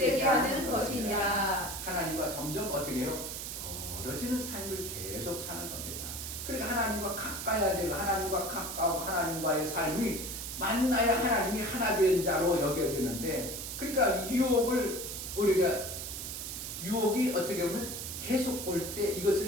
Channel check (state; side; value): noise; right; hiss, 6 dB below the sound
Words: 하는 것이니라. 하나님과 점점 어떻게 해요? 멀어지는 삶을 계속 사는 겁니다. 그러니까 하나님과 가까워질, 하나님과 가까워 하나님과의 삶이 만나야 하나님이 하나 된 자로 여겨지는데, 그러니까 유혹이 어떻게 보면 계속 올 때